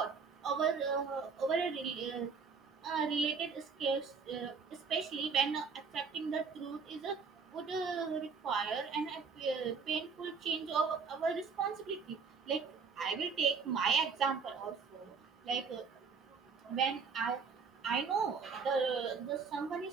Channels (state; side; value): quieter; left; 5.3 dB